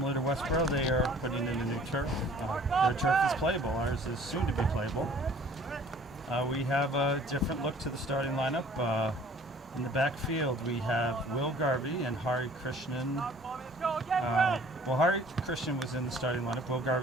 to Westborough, they are putting in a new turf. Their turf is playable. Ours is soon to be playable. We have a different look to the starting lineup. In the backfield, we have Will Garvey and Hari Krishnan. Hari Krishnan was in the starting lineup. Will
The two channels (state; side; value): normal; both; correlation 0.52